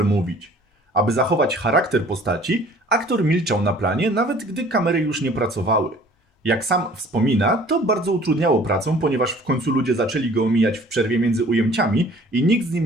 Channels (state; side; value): normal; both; correlation 0.52